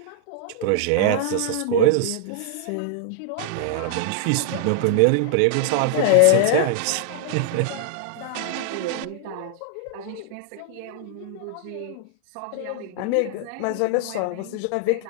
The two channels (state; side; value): different; both; correlation -0.01